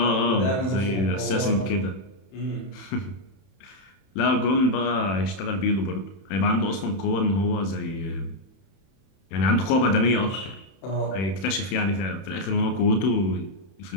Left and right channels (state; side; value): late; right; 31 ms